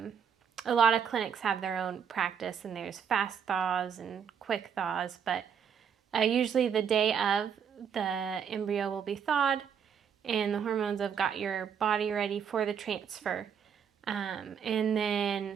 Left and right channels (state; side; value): quieter; left; 7.4 dB